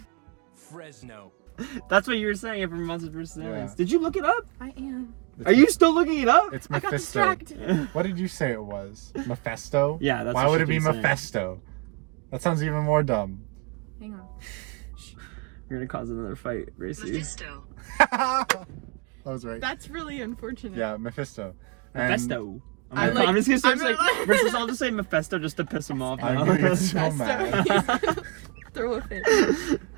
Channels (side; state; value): left; quieter; 30.8 dB